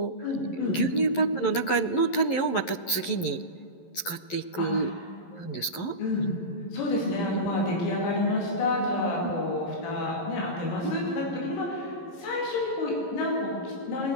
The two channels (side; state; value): right; late; 11 ms